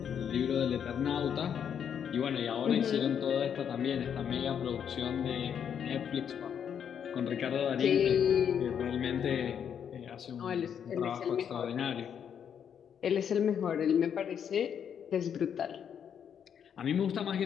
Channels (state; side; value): quieter; right; 8.2 dB